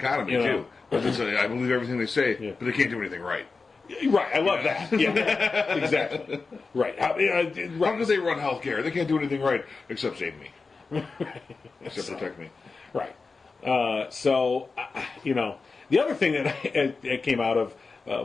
too. But I believe everything they say, but they can't do anything right. Right, I love that. Yeah, exactly. Right. How could they run healthcare? They can't do anything right except save me, except protect me. Right. The other thing that came out of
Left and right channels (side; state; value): right; quieter; 4.3 dB